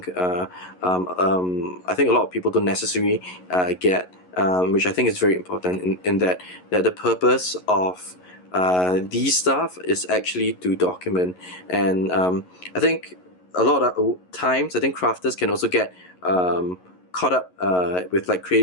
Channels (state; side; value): late; right; 11 ms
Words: I think a lot of people don't necessarily get, which I think is very important in that the purpose of these stuff is actually to document, and I think a lot of times I think crafters can also get caught up with like